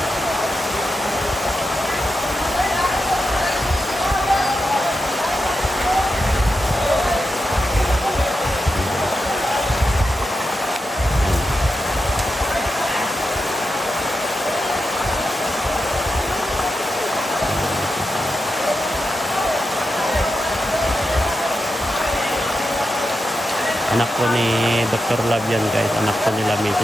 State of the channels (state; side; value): normal; both; correlation 0.87